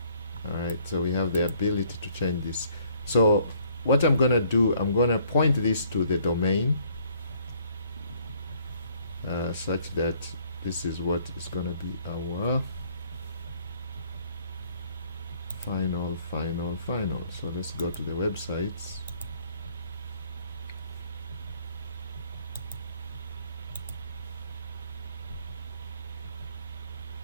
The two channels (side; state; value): both; inverted; correlation -0.63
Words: Alright, so we have the ability to change this. So what I'm gonna do, I'm gonna point this to the domain such that this is what is gonna be our final. So let's go to the websites.